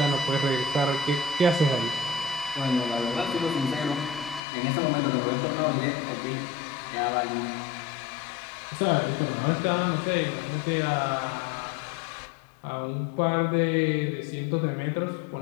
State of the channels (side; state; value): right; drops out; at 4.4 s